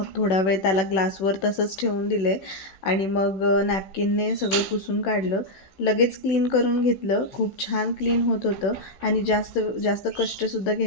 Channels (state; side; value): late; right; 16 ms